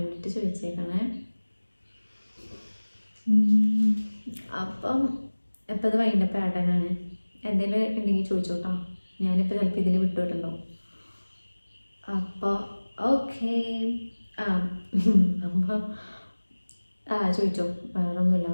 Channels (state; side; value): inverted; both; correlation -1.00